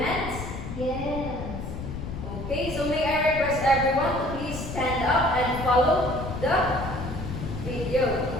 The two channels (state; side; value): noise; left; rumble, 8 dB below the sound